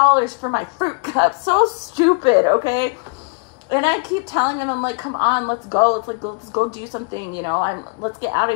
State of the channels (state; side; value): quieter; right; 34.6 dB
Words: for my fruit cup. So stupid, okay? And I keep telling him, I'm like, come on, let's go. Let's go do something, you know. Let's get out